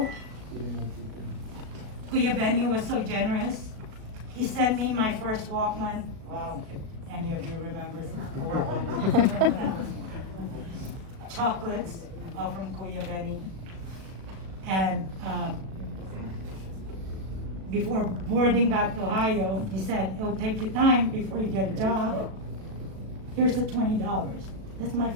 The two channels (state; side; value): late; left; 37 ms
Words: Kuya Benny was so generous. He sent me my first Walkman. Wow, if any of you remember chocolates from Kuya Benny. And before boarding back to Ohio, he said, it'll take you time before you get a job. Here's the $20. That's my